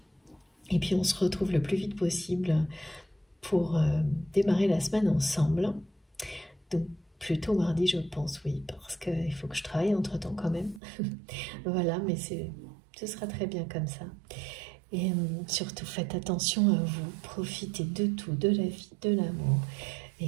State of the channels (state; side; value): drops out; left; at 10.8 s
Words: Et puis, on se retrouve le plus vite possible pour démarrer la semaine ensemble. Donc, plutôt mardi, je pense, oui, parce qu'il faut que je travaille entre-temps quand même. Voilà, mais ce sera très bien comme ça. Et surtout, faites attention à vous, profitez de tout, de la vie, de l'amour,